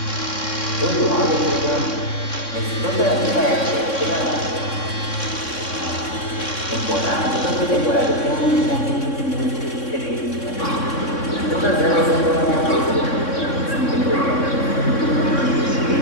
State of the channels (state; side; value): late; right; 3.6 ms